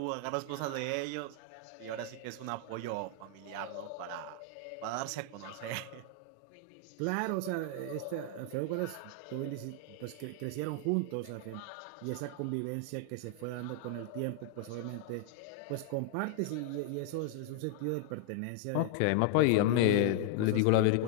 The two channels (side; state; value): both; different; correlation 0.00